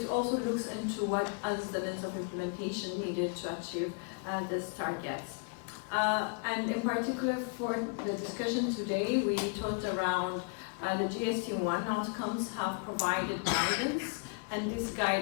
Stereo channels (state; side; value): quieter; right; 36.1 dB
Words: also looks into what is the lens of implementation needed to achieve these targets. And in particular for the discussion today, we talked around the GST1 outcomes have provided guidance, and this